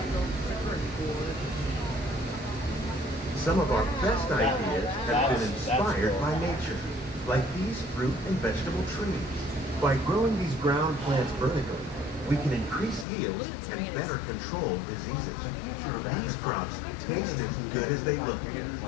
Some of our best ideas have been inspired by nature, like these fruit and vegetable trees. By growing these ground plants vertically, we can increase yields and better control diseases. These crops taste as good as they look.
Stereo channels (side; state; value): right; drops out; at 13.1 s